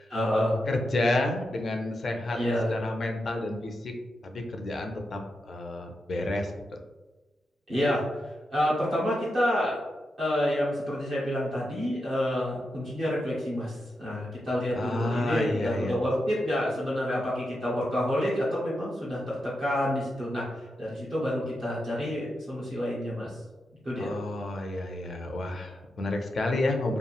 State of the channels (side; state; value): both; normal; correlation 0.87